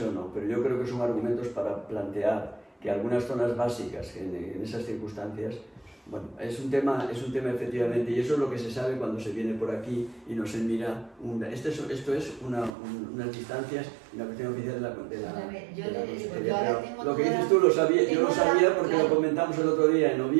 o no, pero yo creo que son argumentos para plantear que algunas zonas básicas en esas circunstancias, bueno, es un tema efectivamente, y eso es lo que se sabe cuando se viene por aquí y no se mira, esto es unas distancias y una cuestión oficial de la Consellería. Lo que dices tú, yo lo sabía porque lo comentamos el otro día en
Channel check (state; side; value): drops out; left; at 12.7 s